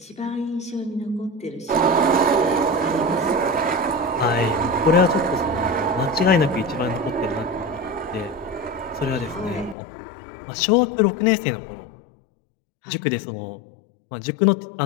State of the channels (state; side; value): drops out; right; at 9.8 s